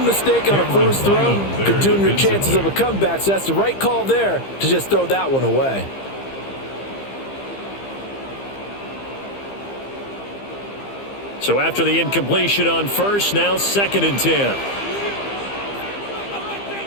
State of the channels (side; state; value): right; late; 15 ms